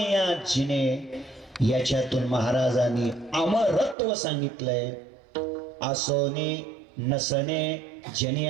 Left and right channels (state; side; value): drops out; left; at 4.0 s